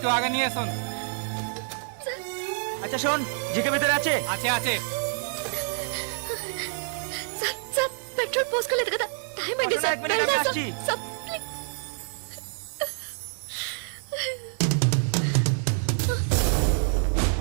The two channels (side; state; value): left; silent; digital silence